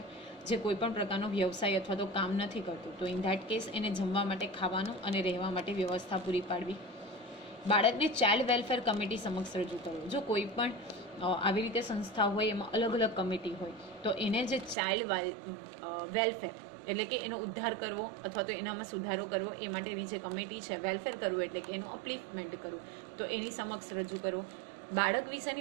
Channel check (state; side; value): drops out; left; at 14.8 s